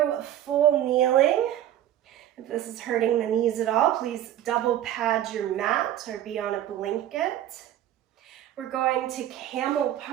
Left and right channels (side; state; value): left; quieter; 12.0 dB